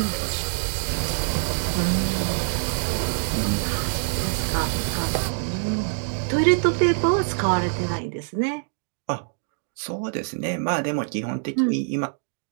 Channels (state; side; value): silent; left; digital silence